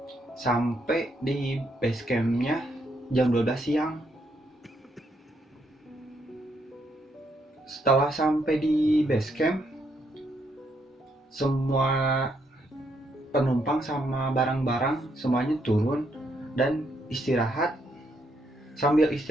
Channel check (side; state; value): both; normal; correlation 0.75